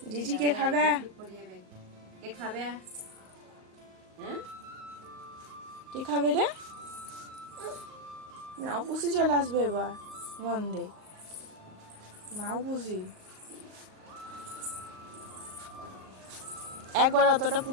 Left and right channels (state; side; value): late; left; 38 ms